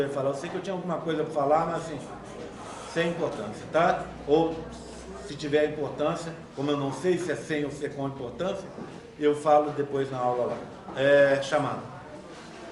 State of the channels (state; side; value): identical; both; correlation 1.00